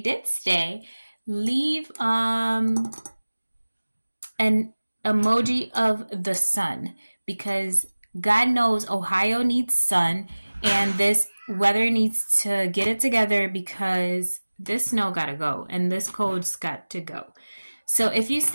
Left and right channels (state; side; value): inverted; both; correlation -1.00